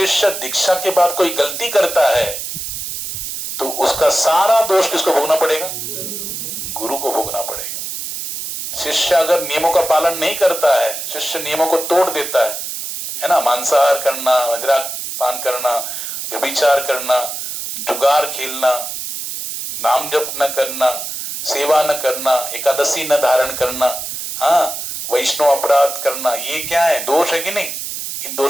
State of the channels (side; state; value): right; noise; hiss, 6 dB below the sound